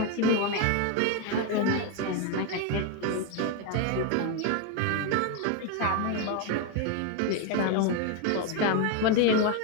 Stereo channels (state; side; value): different; both; correlation 0.02